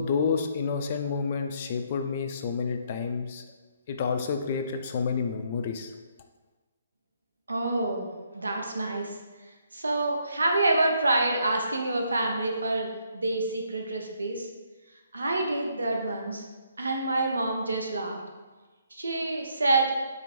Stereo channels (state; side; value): inverted; both; correlation -0.71